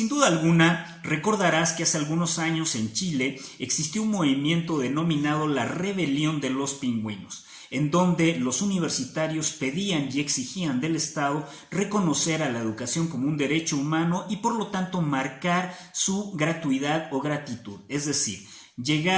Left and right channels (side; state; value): both; identical; correlation 1.00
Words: duda alguna, recordarás que hace algunos años en Chile existió un movimiento denominado la Rebelión de los Pingüinos, en donde los universitarios pedían y exigían del Estado reconocer a la educación como un derecho humano y por lo tanto marcar su gratuidad o gratitud, es decir,